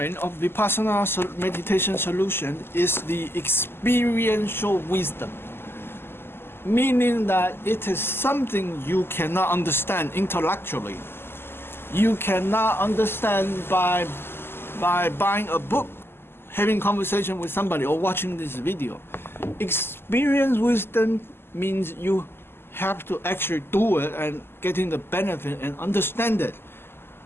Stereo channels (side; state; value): right; late; 0.11 ms